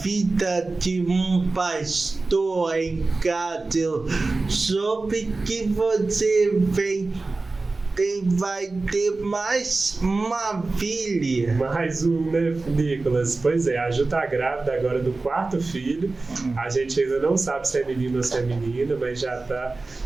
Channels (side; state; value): left; quieter; 3.5 dB